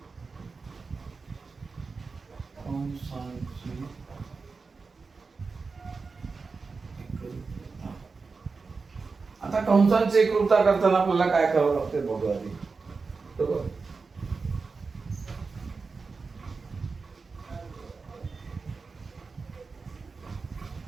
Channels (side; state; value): left; quieter; 4.5 dB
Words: कंसांची एकरूपता. आता कंसांची एकरूपता करताना आपल्याला काय करावं लागते बघूया आधी. बरोबर